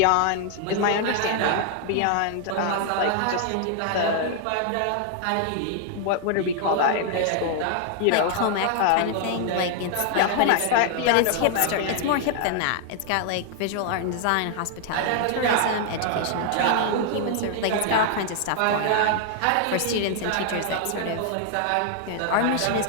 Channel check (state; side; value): different; both; correlation 0.00